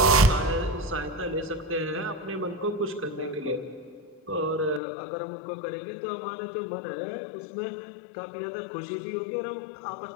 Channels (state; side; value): drops out; right; at 4.8 s